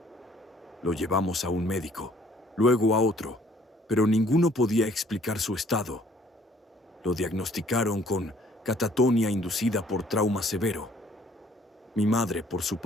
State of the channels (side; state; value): both; normal; correlation 0.60